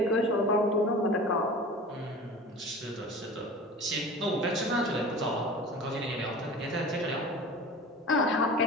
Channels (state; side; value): normal; both; correlation 0.37